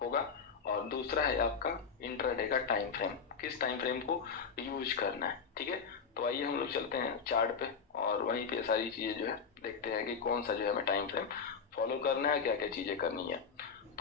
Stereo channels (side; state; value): right; quieter; 6.0 dB